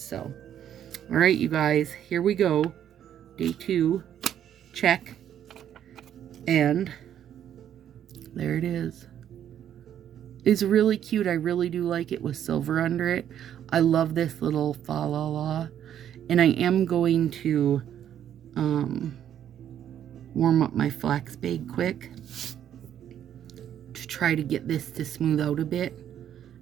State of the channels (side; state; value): left; quieter; 10.1 dB